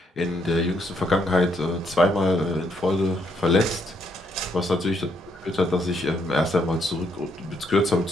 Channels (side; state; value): both; normal; correlation 0.73